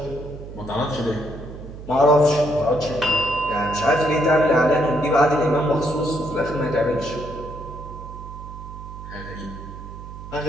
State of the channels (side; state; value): right; noise; hum, 12 dB below the sound